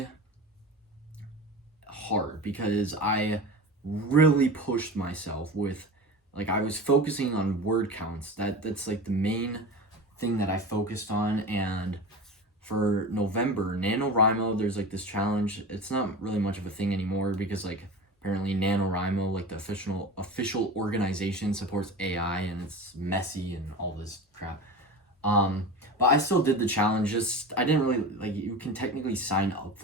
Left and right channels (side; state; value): both; normal; correlation 0.31